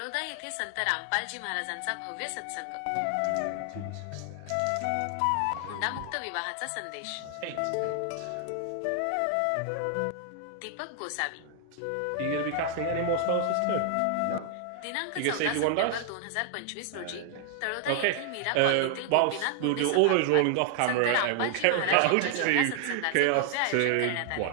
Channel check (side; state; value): both; different; correlation 0.00